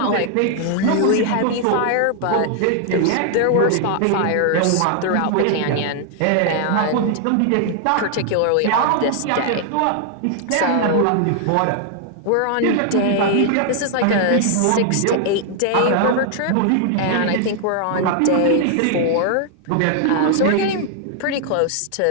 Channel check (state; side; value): different; both; correlation 0.00